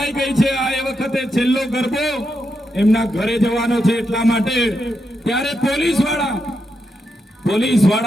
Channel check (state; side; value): normal; both; correlation 0.84